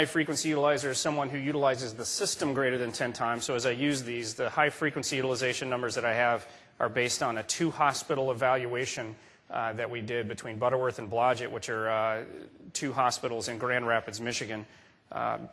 utilizer is someone who utilizes the system greater than 10 times. So as I use these, the high-frequency utilization numbers that I have are based on a 2-hospital evaluation that we did between Butterworth and Blodgett, which are 2 hospitals in Grand Rapids, Michigan.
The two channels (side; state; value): both; identical; correlation 1.00